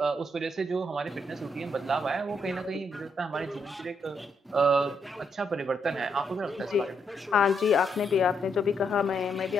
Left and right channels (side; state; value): both; normal; correlation 0.77